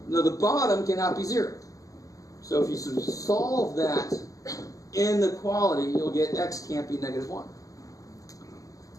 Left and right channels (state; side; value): late; right; 0.17 ms